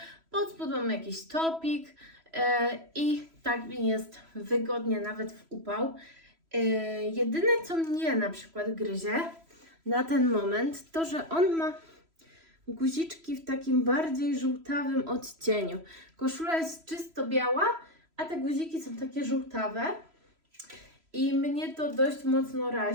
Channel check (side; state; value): left; late; 3.0 ms